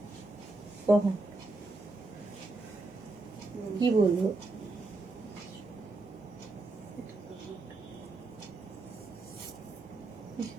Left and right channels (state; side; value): quieter; left; 3.2 dB